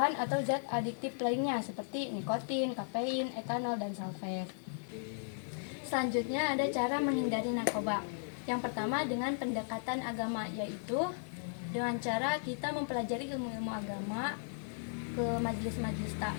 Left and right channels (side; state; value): right; silent; digital silence